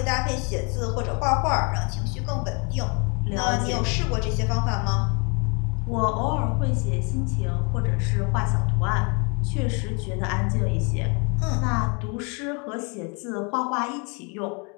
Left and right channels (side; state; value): right; quieter; 34.0 dB